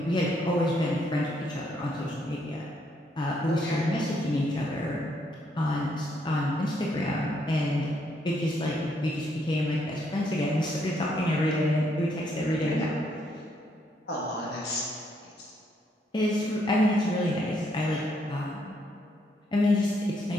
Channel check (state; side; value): normal; both; correlation 0.73